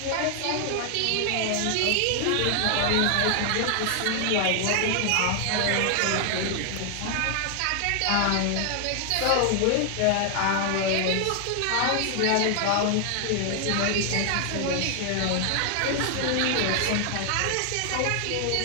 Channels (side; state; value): both; different; correlation 0.00